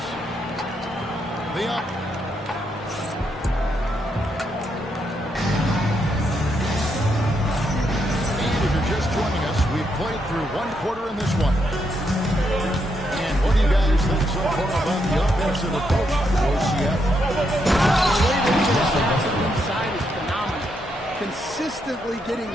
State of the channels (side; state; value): both; normal; correlation 0.79